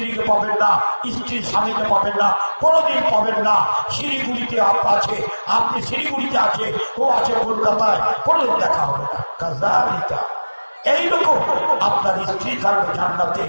পাবেন না, স্ত্রীর স্বামীকে পাবেন না, কোনোদিন পাবেন না। শিলিগুড়িতে আছে, আপনি শিলিগুড়িতে আছে, ও আছে কলকাতায়, কোনোদিন দেখা হবে না। কাজালিকা, এইরকম আপনার স্ত্রী থাকবে জান্নাতে,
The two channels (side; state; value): both; inverted; correlation -1.00